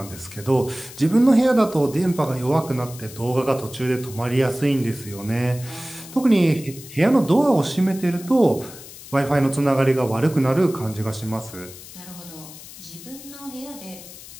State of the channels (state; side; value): noise; left; hiss, 16 dB below the sound